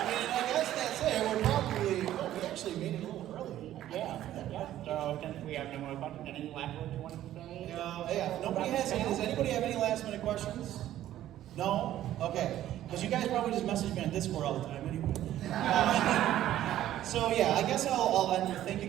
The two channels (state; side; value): quieter; left; 12.8 dB